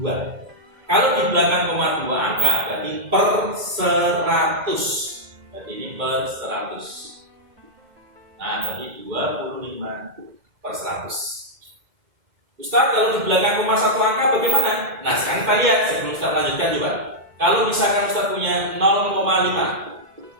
Kalau di belakang koma 2 angka berarti per 100. Berarti ini per 100. Nah berarti 25/100. Ustaz, kalau di belakang koma 1 angka bagaimana? Nah sekarang kita lihat sebelum Ustaz lanjutkan coba. Kalau misalkan Ustaz punya 0,5,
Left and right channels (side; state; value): left; late; 2.1 ms